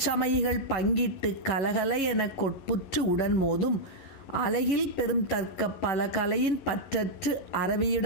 பங்கிட்டு கலகல என கொட்புற்று உடன் மோதும் அலகில் பெரும் தர்க்க பல கலையின் பற்றற்று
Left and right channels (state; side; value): late; right; 11 ms